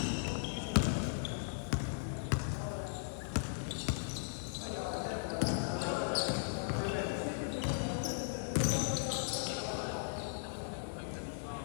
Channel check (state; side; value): silent; right; digital silence